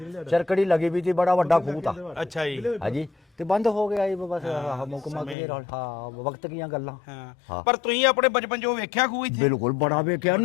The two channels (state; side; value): drops out; right; at 5.4 s